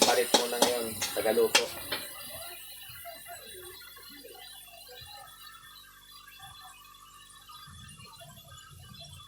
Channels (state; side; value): noise; right; hum, 27 dB below the sound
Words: palit muna ngayon, tagaluto.